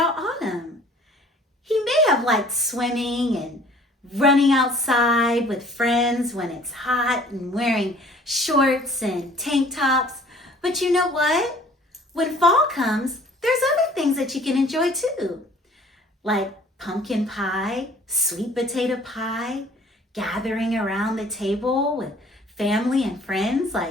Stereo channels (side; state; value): both; normal; correlation 0.53